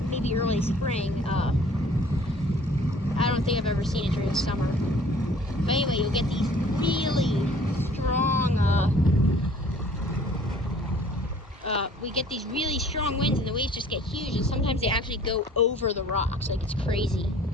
maybe early spring. I don't think I've ever seen it during the summer. But anyway, you'll get these really strong, we get these really strong winds and the waves just get huge, and sometimes they actually go over the rocks. Like, it's crazy.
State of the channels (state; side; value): normal; both; correlation 0.52